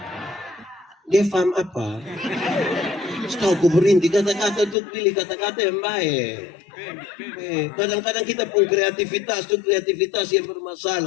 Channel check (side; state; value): right; drops out; at 4.8 s